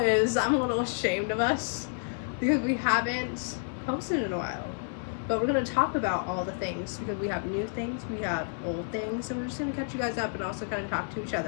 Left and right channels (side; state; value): right; silent; digital silence